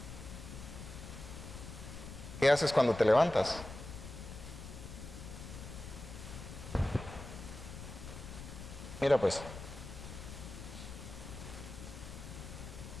¿Qué haces cuando te levantas? Mira pues.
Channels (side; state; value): left; noise; rumble, 11 dB below the sound